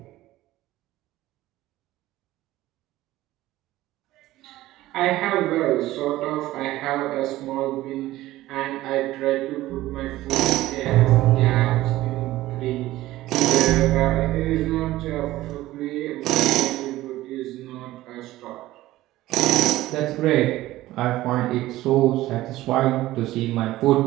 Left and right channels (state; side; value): quieter; left; 16.2 dB